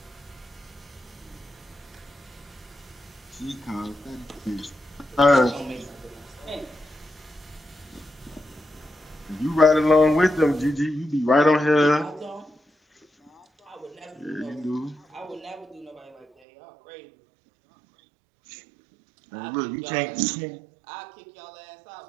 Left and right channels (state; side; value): drops out; left; at 16.2 s